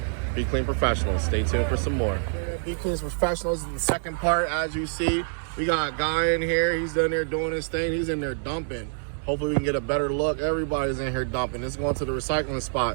Be Clean Professionals. Stay tuned for some more. Be Clean Professionals is the second part. As you see, we got a guy in here. He's in there doing his thing. He's in there dumping. Hopefully we can get a better look. Everybody's in here dumping. This is going to the recycling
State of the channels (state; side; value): silent; left; digital silence